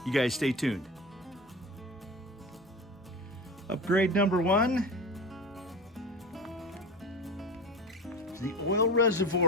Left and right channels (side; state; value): both; normal; correlation 0.28